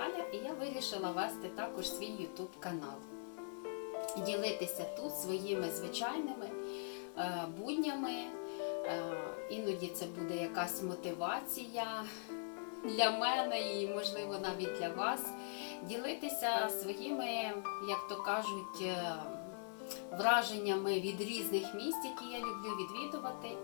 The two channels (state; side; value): silent; right; digital silence